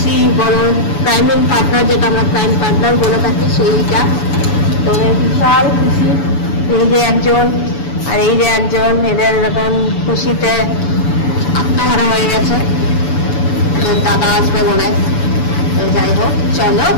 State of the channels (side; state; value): right; late; 7.0 ms